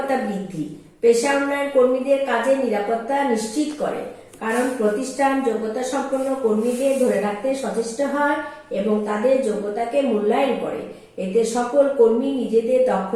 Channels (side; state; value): both; identical; correlation 1.00